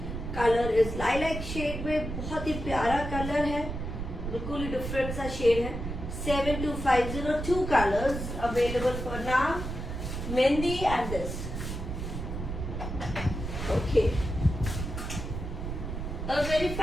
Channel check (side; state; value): right; noise; rumble, 5 dB below the sound